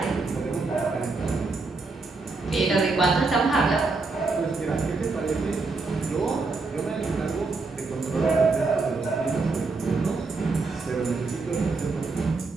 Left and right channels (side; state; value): left; quieter; 3.9 dB